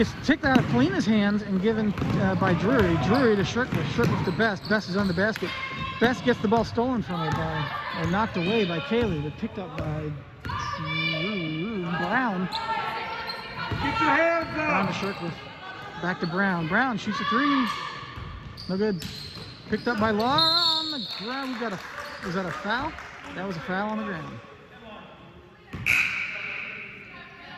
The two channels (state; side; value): identical; both; correlation 1.00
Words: kicked out of Kalina's hands and given by Drury. Drury to Shirkliff. Shirkliff to Best. Best is on the basket. Best gets the ball stolen from her or knocked away by Kaylee, but picked up by Brown. Get your hands Brown up! to Shirkliff. Back to Brown. Brown shoots a 3. No good. Picked up by Laura on the ground. We got a. Was that a foul? That was a foul on the ground.